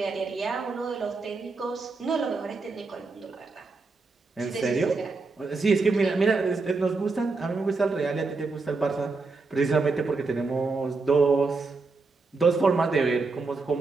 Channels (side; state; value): left; quieter; 3.9 dB